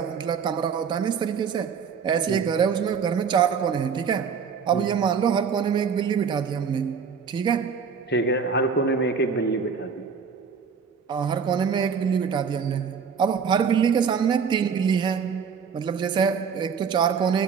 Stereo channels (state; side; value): quieter; left; 6.3 dB